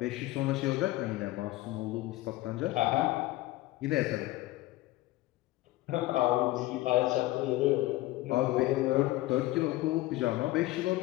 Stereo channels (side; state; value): right; quieter; 17.7 dB